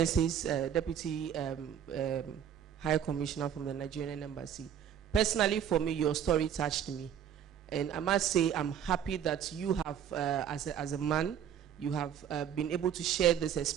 Deputy High Commissioner from the Nigerian Embassy. Personally, for me, your story touched me. And I must say, I'm happy that you have, as a man, you have been able to share this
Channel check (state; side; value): quieter; left; 9.2 dB